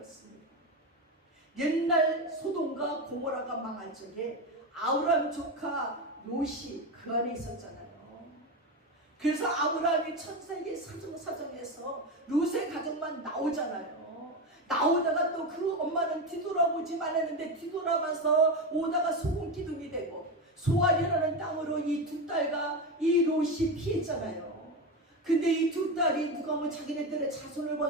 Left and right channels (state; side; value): normal; both; correlation 0.16